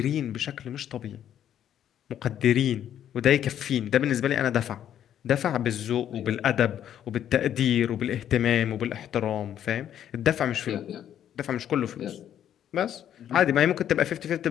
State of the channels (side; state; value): right; quieter; 10.3 dB